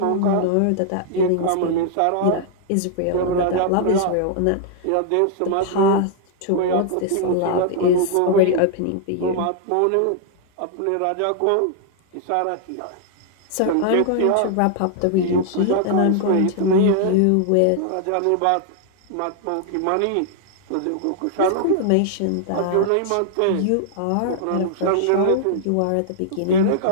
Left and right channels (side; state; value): both; different; correlation -0.01